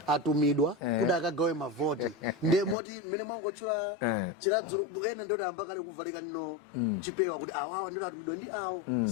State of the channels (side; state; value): right; drops out; at 2.8 s